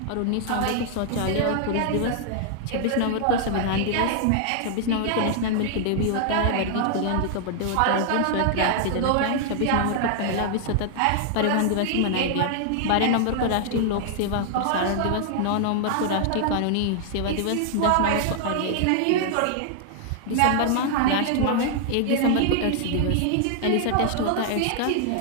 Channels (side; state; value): both; different; correlation 0.00